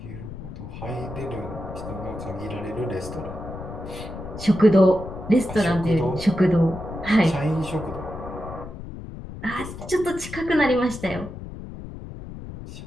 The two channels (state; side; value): noise; left; rumble, 11 dB below the sound